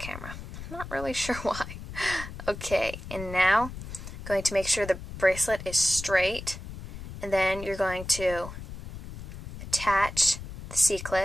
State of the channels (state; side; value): noise; left; rumble, 11 dB below the sound